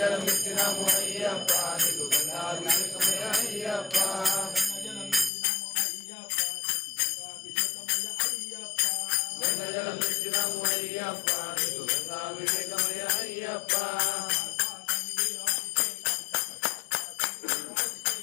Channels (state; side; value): drops out; right; at 5.3 s